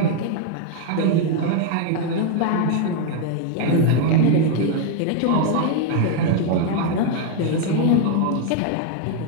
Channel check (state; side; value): different; both; correlation 0.01